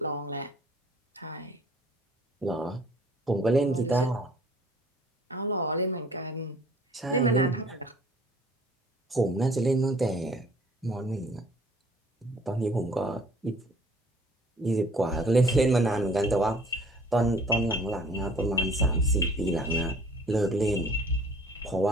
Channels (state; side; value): normal; both; correlation 0.54